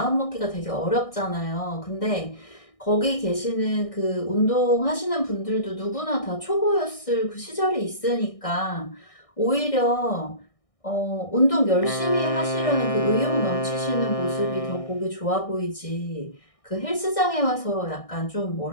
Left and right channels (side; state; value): right; late; 1.6 ms